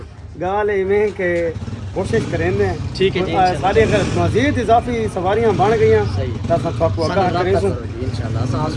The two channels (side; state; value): both; identical; correlation 1.00